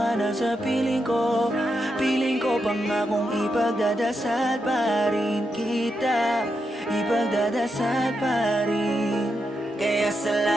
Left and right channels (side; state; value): both; normal; correlation 0.85